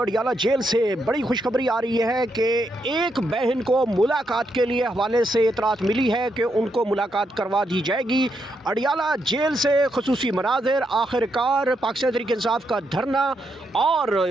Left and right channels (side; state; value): both; normal; correlation 0.80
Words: जेल से बड़ी खुशखबरी आ रही है कि एक बहन को मुलाकात के लिए हवाले से इतरात मिली है कि उनको मुलाकात करवा दी जाएगी। अडियाला जेल से खुसूसी मनाज़िर, आखिरकार पाकिस्तान तहरीक इंसाफ का धरना और